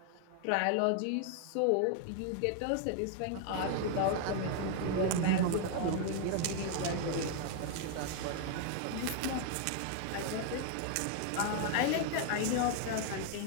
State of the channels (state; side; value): different; both; correlation 0.00